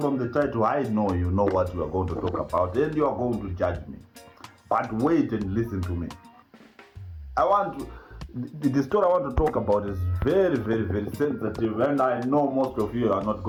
the title, I know you know what we are going to talk about and you are going to judge me. But wait and listen to me. The story I want to talk about is very sensitive, and I know most of you are not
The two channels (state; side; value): identical; both; correlation 1.00